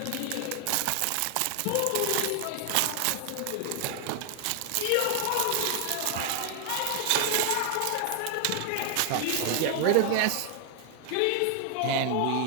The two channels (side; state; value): both; different; correlation 0.00